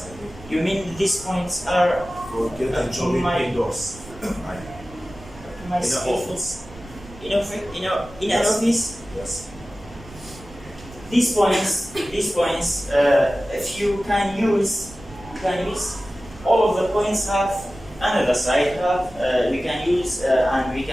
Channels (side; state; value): right; noise; rumble, 19 dB below the sound